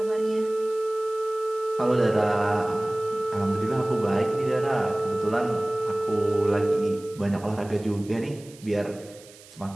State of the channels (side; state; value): right; noise; hiss, 22 dB below the sound